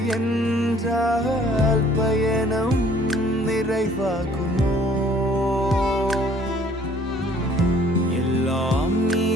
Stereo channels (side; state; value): both; normal; correlation 0.57